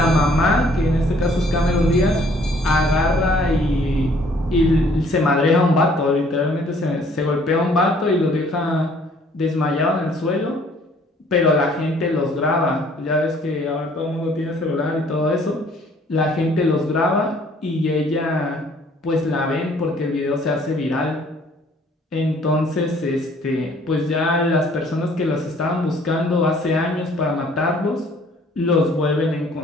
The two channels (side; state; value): both; normal; correlation 0.59